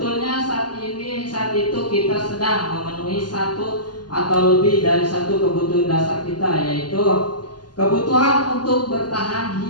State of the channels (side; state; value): right; late; 0.70 ms